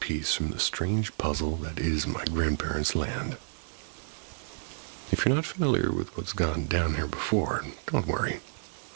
from the strange puzzle that is my grandparents' land. If you're not familiar with what's gone down here before, don't worry.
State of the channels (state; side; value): silent; left; digital silence